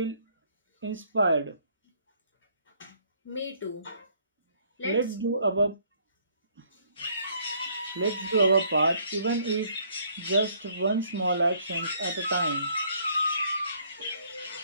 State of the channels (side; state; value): both; inverted; correlation -0.63